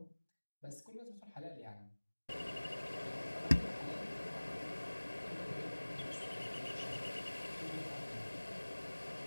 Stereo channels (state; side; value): inverted; both; correlation -1.00